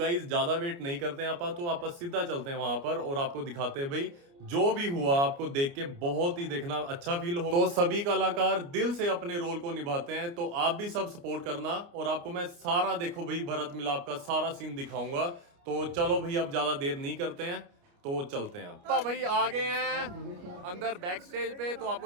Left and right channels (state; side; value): late; left; 29 ms